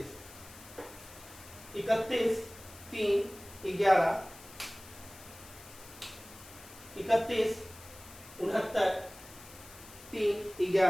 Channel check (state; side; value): noise; left; hiss, 18 dB below the sound